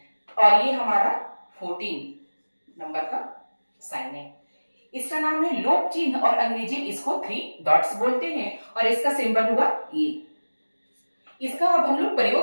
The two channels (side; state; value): both; inverted; correlation -1.00